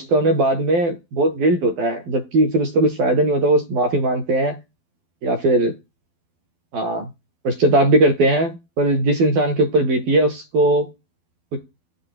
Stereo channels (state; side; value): late; left; 12 ms